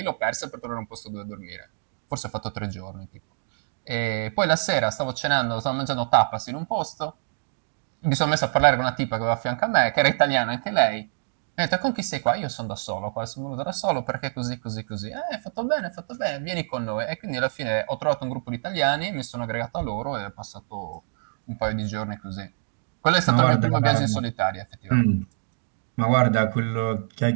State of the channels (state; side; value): silent; left; digital silence